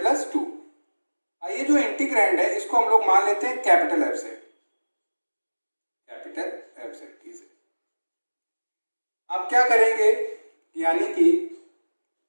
2। ये जो इंटीग्रैंड है इसको हम लोग मान लेते हैं कैपिटल F से, कैपिटल F से। अब क्या करेंगे, यानी कि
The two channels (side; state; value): both; inverted; correlation -1.00